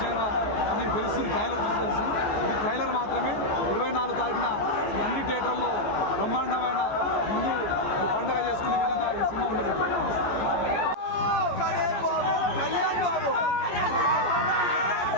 అనేది తెలుస్తుంది. ట్రైలర్ చూసి తెలుస్తుంది. ఇది ట్రైలర్ మాత్రమే. 24 తారీఖున నంది థియేటర్లో బ్రహ్మాండమైన హిందూ పండుగ చేసుకునే విధంగా ఈ సినిమా ఉండబోతుంది.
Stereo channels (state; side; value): late; right; 14 ms